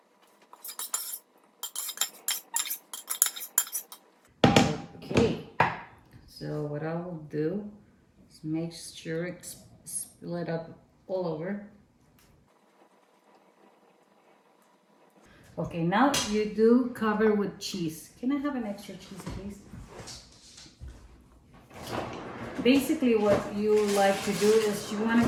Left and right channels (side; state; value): both; identical; correlation 1.00